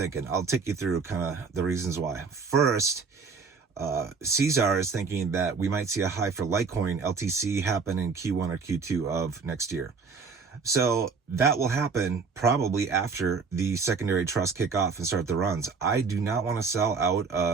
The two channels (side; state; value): left; quieter; 5.0 dB